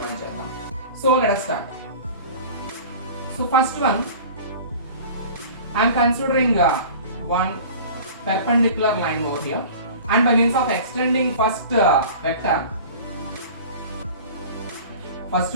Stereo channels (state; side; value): inverted; both; correlation -0.40